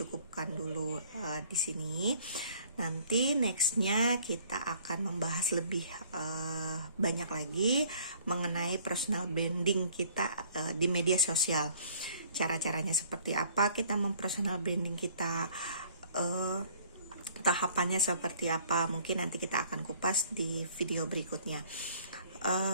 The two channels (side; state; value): both; inverted; correlation -0.55